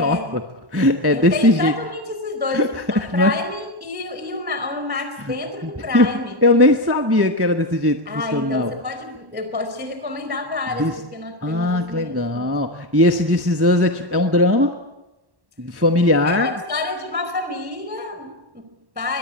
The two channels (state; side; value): late; left; 1.1 ms